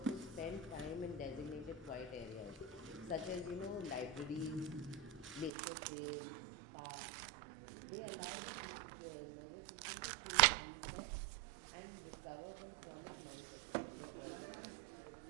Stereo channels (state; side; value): drops out; left; at 5.5 s